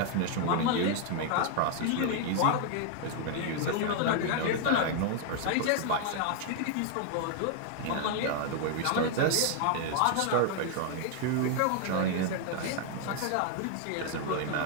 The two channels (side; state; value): both; different; correlation 0.00